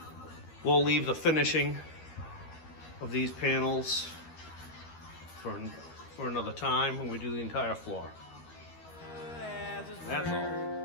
We'll leave the finishing of these panels for another time when we do the entire floor. That's all.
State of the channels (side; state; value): right; late; 13 ms